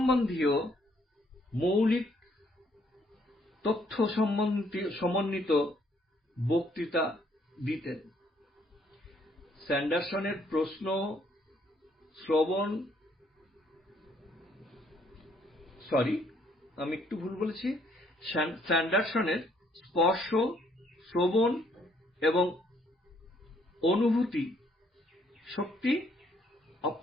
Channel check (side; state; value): both; normal; correlation 0.67